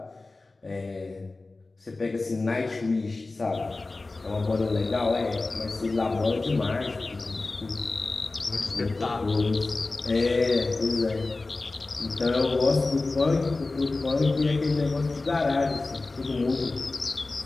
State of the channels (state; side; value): quieter; right; 3.4 dB